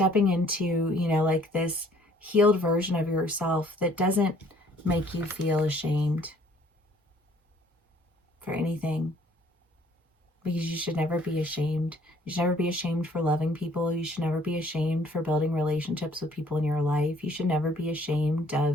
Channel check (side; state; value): both; normal; correlation 0.59